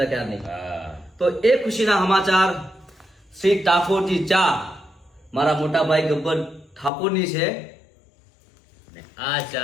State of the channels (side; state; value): right; drops out; at 6.9 s